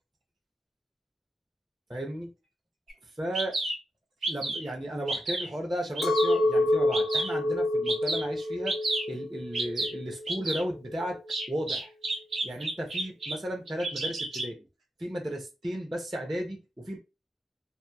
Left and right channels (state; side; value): normal; both; correlation 0.86